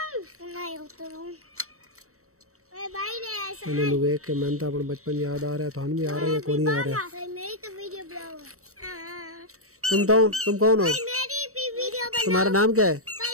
इन्होंने देख के मन तो अपना बचपन याद आ रहा है, थान भी आ रहा है, कौन नहीं आ रहा है। तुम कौन हो? तुम्हारा नाम क्या है?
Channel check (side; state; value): left; late; 0.64 ms